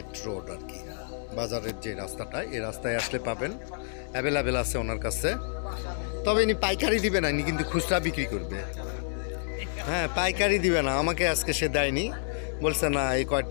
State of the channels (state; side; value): silent; right; digital silence